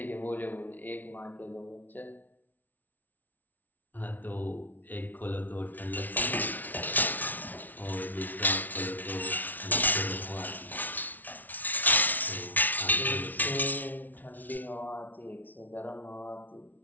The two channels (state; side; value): late; right; 0.081 ms